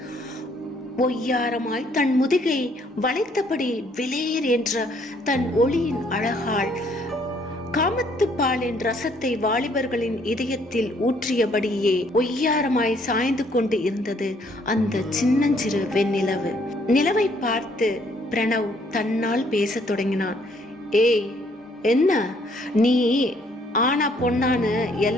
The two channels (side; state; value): both; normal; correlation 0.65